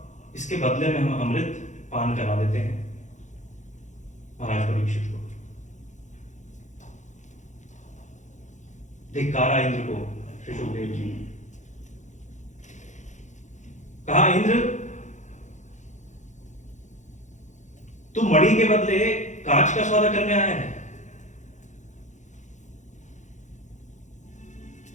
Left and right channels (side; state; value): right; late; 0.35 ms